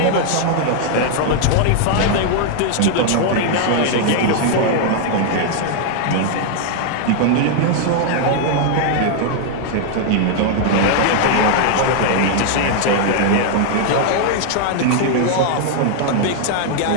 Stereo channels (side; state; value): both; different; correlation 0.00